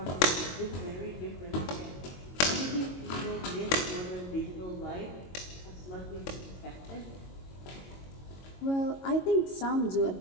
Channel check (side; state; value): right; late; 22 ms